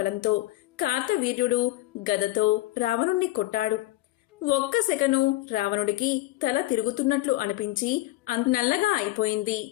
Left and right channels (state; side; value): quieter; right; 17.5 dB